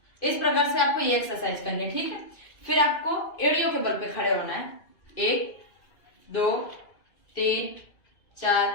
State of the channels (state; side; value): late; right; 2.5 ms